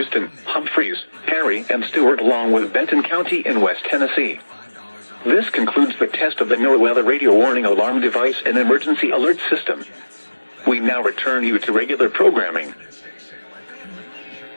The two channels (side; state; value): both; inverted; correlation -1.00